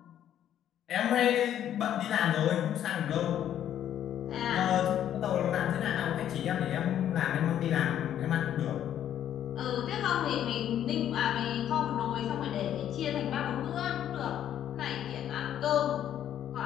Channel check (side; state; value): right; quieter; 10.6 dB